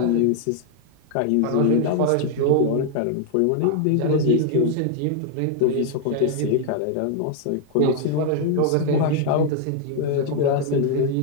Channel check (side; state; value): both; different; correlation 0.00